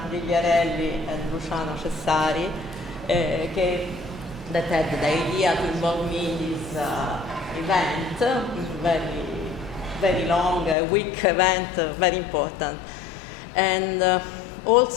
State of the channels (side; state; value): right; drops out; at 10.8 s